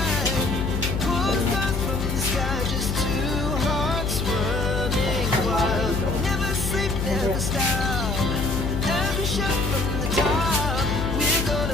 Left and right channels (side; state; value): left; noise; hum, 1 dB below the sound